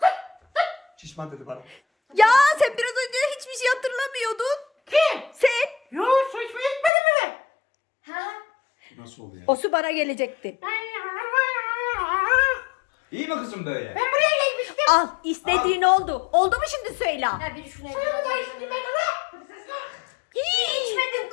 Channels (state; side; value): drops out; right; at 6.9 s